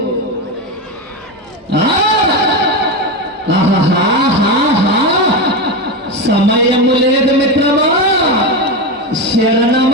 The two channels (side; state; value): both; normal; correlation 0.16